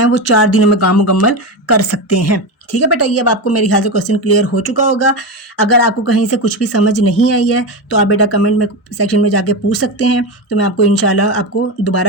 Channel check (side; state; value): right; late; 1.0 ms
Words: वो 4 दिनों में काम मुकम्मल कर सकते हैं, ठीक है बेटा। ये अब आपको मेरे ख्याल से क्वेश्चन क्लियर हो चुका होगा। अगर आपको कहीं से कुछ भी समझ नहीं आई है तो आप बेटा कमेंट में सेक्शन में जाके पूछ सकते हैं, तो मैं आपको इंशाल्लाह आपको